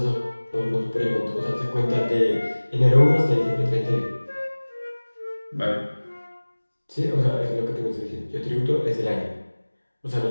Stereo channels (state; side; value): inverted; both; correlation -1.00